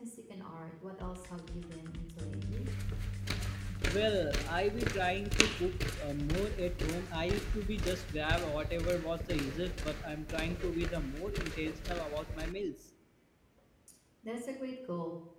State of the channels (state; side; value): identical; both; correlation 1.00